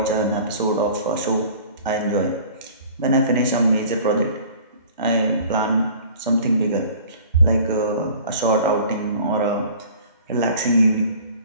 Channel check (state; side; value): inverted; both; correlation -0.47